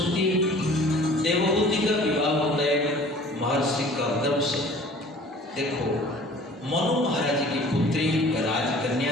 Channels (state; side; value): normal; both; correlation 0.48